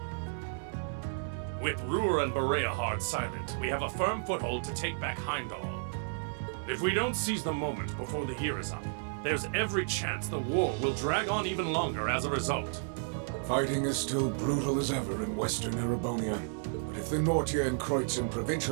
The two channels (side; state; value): left; silent; digital silence